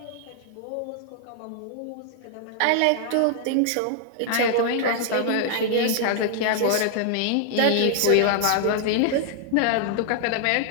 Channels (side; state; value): both; different; correlation 0.00